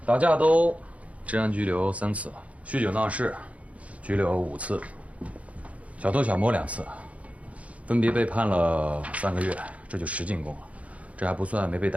打架斗治安拘留3次，酗酒闹事拘留5次，小偷小摸2次，分别被判了3个月，这就10进宫了。这还不算没被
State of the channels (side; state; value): left; late; 0.066 ms